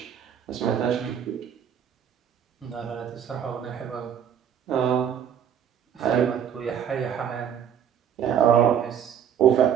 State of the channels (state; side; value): quieter; left; 8.8 dB